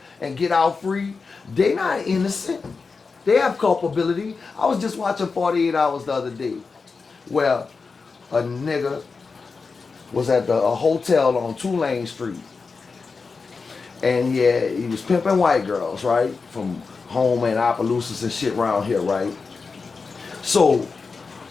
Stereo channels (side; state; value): right; quieter; 4.6 dB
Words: and get out free. They not innocent. They have culpability. I was just watching 48 Hours the other day where a nigga was at a hotel on Tulane Street. And yeah, he was pimping white girls, right? From home and Opelousas and shit around here, right? So